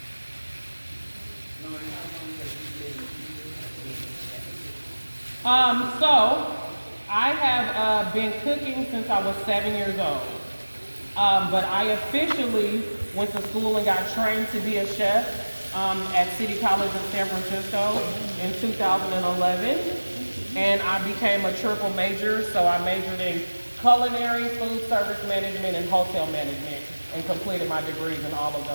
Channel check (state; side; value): inverted; both; correlation -1.00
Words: So I have been cooking since I was 7 years old. But I officially went to school and got trained to be a chef at City College in San Francisco in 2011. And I became a triple major, so I majored in culinary, food service management, and hotel management, and completed my degrees in all of